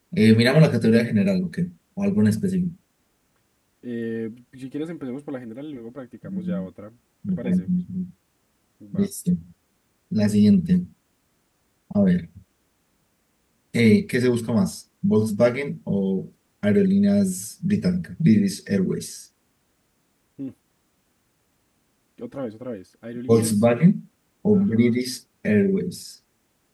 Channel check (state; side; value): identical; both; correlation 1.00